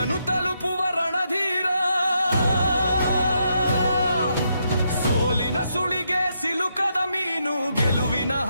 ತಲುಪುವ ರಣಧೀರ. ಸೋಲಿನ ಸುಳಿಗೆ ಸಿಲುಕದ ಮೀನು ಗೆಲುವಿನ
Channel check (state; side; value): inverted; both; correlation -0.79